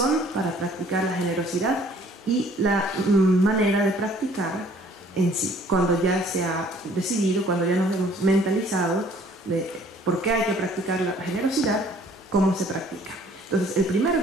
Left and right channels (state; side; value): normal; both; correlation 0.56